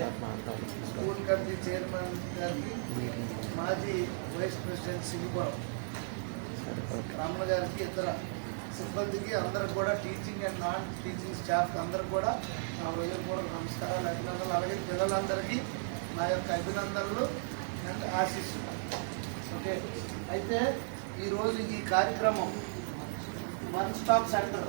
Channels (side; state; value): left; silent; 55 dB below the other